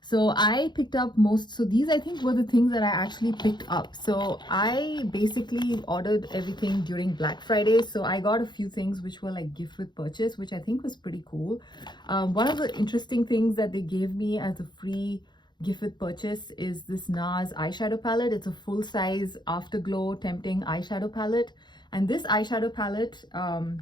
So I picked up so these I think were the things that I actually picked up. So I basically ordered everything during Black Friday. So I got a few things which were like gift with purchase, which I think was pretty cool. One of the interesting things that they gave me as a free gift with purchase is this Nars eyeshadow palette. It's a full-size Afterglow Tempting eyeshadow palette. And this eyeshadow palette,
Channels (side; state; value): right; late; 0.21 ms